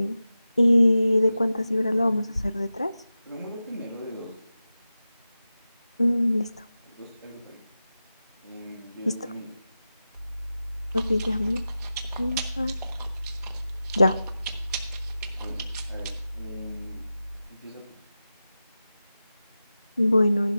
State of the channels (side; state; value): both; inverted; correlation -0.94